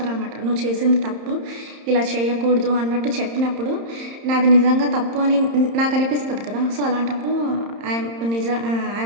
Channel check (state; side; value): late; left; 30 ms